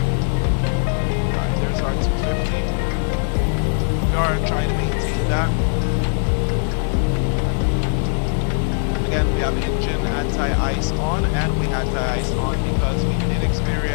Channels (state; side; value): silent; right; 65 dB below the other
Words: alright, there's our 250. We are trying to maintain that. Again, we have engine anti-ice on, and we anti-ice on because we did